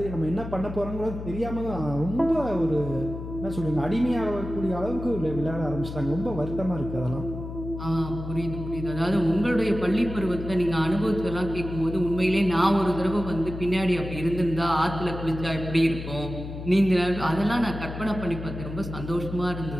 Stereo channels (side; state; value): left; noise; hum, 9 dB below the sound